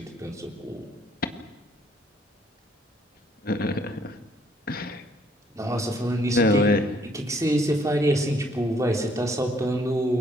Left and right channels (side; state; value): both; normal; correlation 0.65